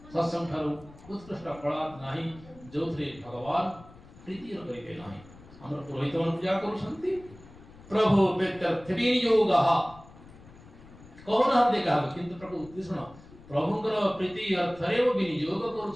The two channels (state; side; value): noise; left; rumble, 21 dB below the sound